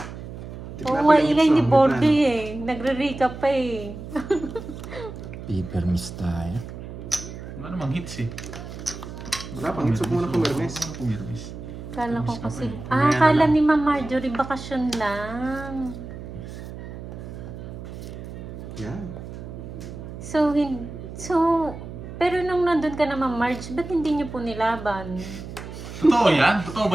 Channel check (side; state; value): right; noise; hum, 11 dB below the sound